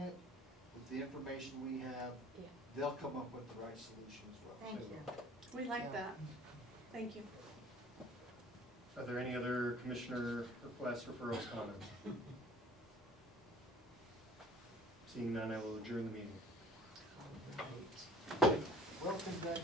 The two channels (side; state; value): both; normal; correlation 0.50